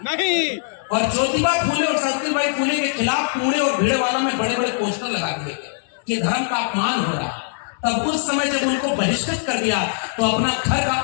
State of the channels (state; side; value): silent; right; digital silence